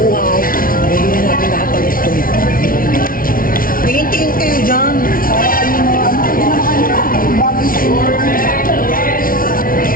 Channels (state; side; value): late; right; 0.42 ms